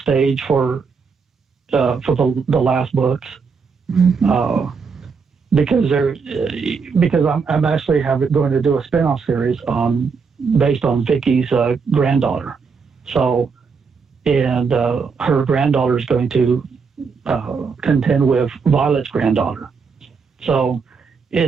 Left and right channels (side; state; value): left; quieter; 5.3 dB